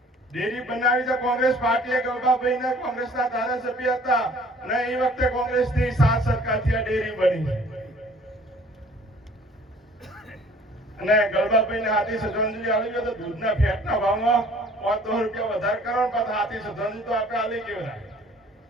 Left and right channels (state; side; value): normal; both; correlation 0.54